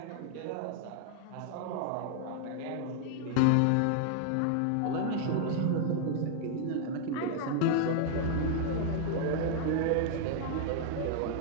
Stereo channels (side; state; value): both; different; correlation 0.00